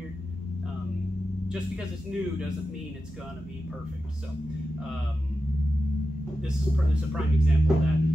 Just because it's new doesn't mean it's gonna be perfect. So this is a prime example of that.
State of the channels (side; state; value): both; normal; correlation 0.91